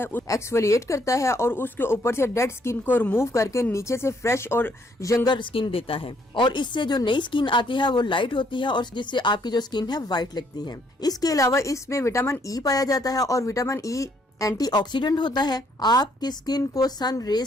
एक्सफोलिएट करता है और उसके ऊपर से डेड स्किन को रिमूव करके नीचे से फ्रेश और यंगर स्किन देता है, और इससे जो नई स्किन आती है वो लाइट होती है और जिससे आपकी जो स्किन है वाइट लगती है। इसके अलावा इसमें विटामिन ई पाया जाता है और विटामिन ई एंटीऑक्सीडेंट होता है, आपकी स्किन को सन रेज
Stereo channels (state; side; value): normal; both; correlation 0.68